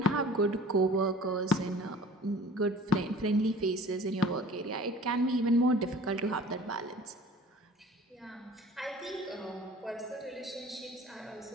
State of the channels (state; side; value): normal; both; correlation 0.46